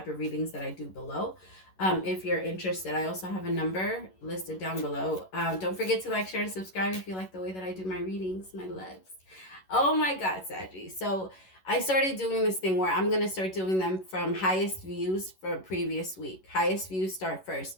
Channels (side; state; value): right; late; 11 ms